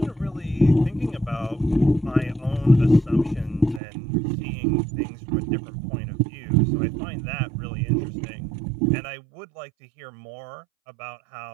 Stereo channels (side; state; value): left; drops out; at 3.8 s